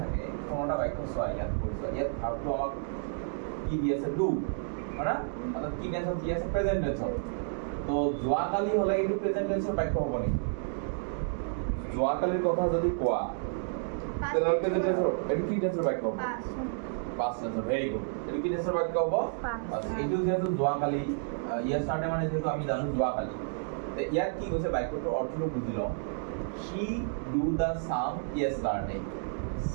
থাকে কোনোটা বাক্য চোৱা ইয়াত কৰিছো ইয়াত ভাবটো আমাক কি দি আছে do হয়না অৰ্থাৎ কি টেন্সত কি আছে প্ৰেজেন্ট টেন্সত তো যোৱাকালি হলে কিন্তু প্ৰেজেন্ট টেন্সৰ বাক্য হ'ব নেকি যোৱাকালিৰ কথা যদি কোৱা তেনে প্ৰেজেন্ট টেন্সৰ এটো কি টেন্সৰ বাক্য হ'ব past tense very good এটো কি টেন্সৰ বাক্য হ'ব এটো যেহেতু যোৱাকালি yesterday মানে যেহেতু আমি জানো যোৱাকালি তে ইয়াত কি কৈছে বাক্যটোৰ অৰ্থটো বুজি লওঁ she do the sum yesterday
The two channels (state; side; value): silent; left; digital silence